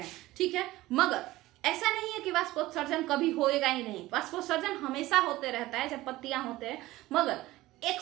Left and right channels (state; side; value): quieter; left; 17.6 dB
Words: ठीक है। मगर ऐसा नहीं है कि वाष्पोत्सर्जन कभी होएगा ही नहीं, वाष्पोत्सर्जन हमेशा होते रहता है जब पत्तियां होते हैं, मगर